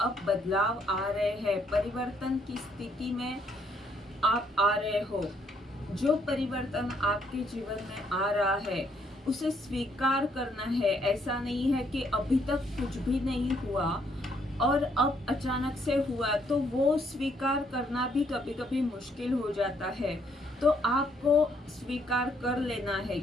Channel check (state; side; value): normal; both; correlation 0.70